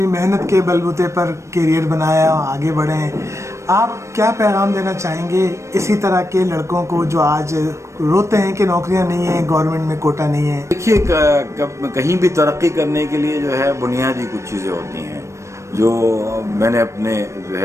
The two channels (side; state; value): left; late; 0.14 ms